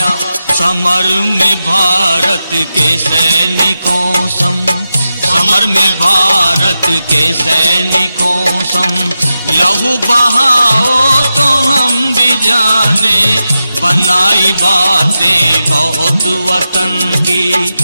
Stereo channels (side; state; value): both; inverted; correlation -0.90